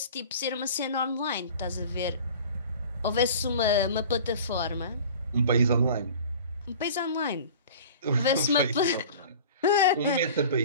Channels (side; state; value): both; inverted; correlation -0.41